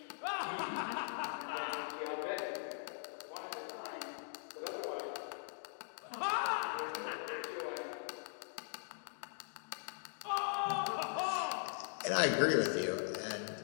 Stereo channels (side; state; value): right; silent; digital silence